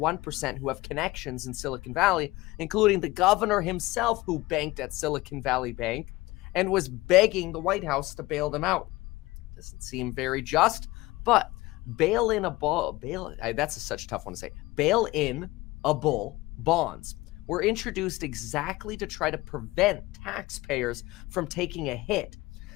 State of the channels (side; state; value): right; quieter; 20.0 dB